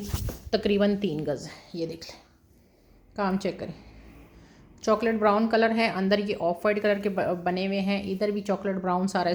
तकरीबन 3 गज़ है। ये देख लें, काम चेक करें। चॉकलेट ब्राउन कलर है, अंदर ये ऑफ वाइट कलर के बने हुए हैं, इधर भी चॉकलेट ब्राउन सारा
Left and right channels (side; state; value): both; identical; correlation 1.00